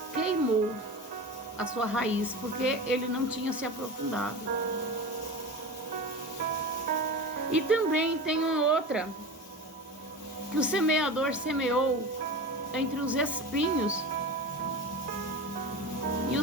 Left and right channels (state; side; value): normal; both; correlation 0.29